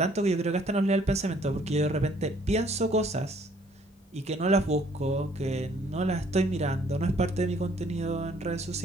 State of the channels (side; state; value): both; normal; correlation 0.61